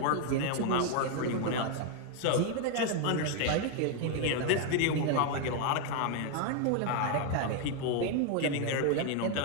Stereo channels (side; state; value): both; different; correlation 0.01